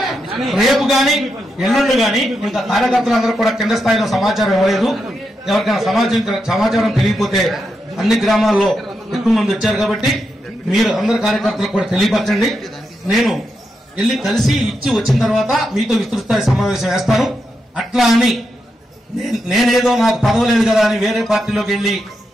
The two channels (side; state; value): both; normal; correlation 0.85